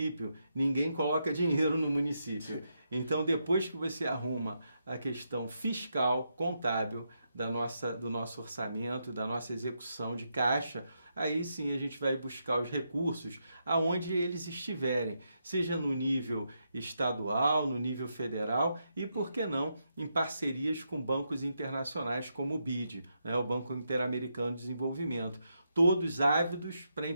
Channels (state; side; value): inverted; both; correlation -0.82